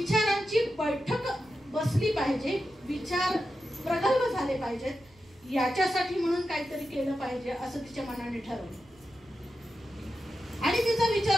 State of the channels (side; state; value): right; noise; rumble, 29 dB below the sound